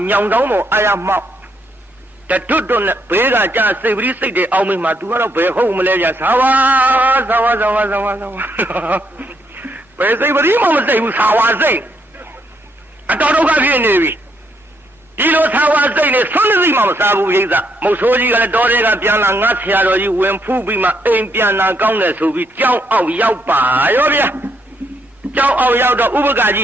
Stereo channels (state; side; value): normal; both; correlation 0.75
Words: ညောင်ဆောင်ပေါ်အာရမောက်တတွတ်တွတ်နဲ့ဘေးကကြာစိတ်ပရိစိတ်တွေအောင်းမိမှာ तू ကတော့ဘယ်ဟုတ်မလဲကြာသာဝါဘယ်စိတ်ပရိမှမစိတ်ဘူးသာဝါစိတ်အတော်ဒုက္ခဖြစ်နေပြီဒီလိုသာဝါစိတ်နဲ့ဆွမ်းသိမှမစားဘူးပြိဿမုတ်ဆိုးကြီးကလည်းတော်တဲ့ကပြန်လာငါဆရာတော်ကြီးဝင်ဖူးပြီးမှအိမ်ပြန်လာကောင်းတယ်ဆိုပြီးကြောင်းအောက်ရောက်ပါရောဗျာကြောင်းအောက်ရောက်တော့ဥပကကြီ